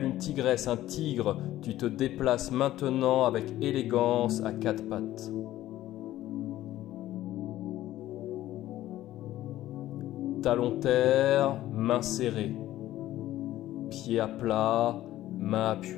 une tigresse, un tigre, tu te déplaces maintenant avec élégance à quatre pattes. Talon terre, main serrée. Pied à plat, main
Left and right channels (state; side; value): quieter; right; 14.4 dB